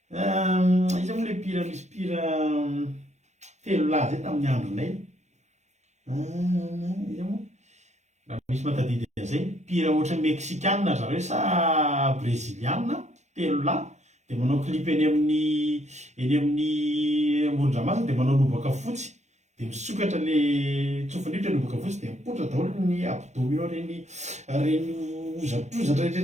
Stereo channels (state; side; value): late; left; 0.33 ms